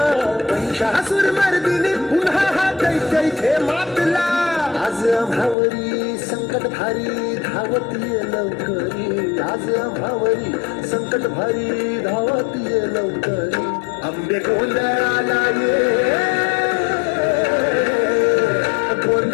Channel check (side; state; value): right; drops out; at 5.6 s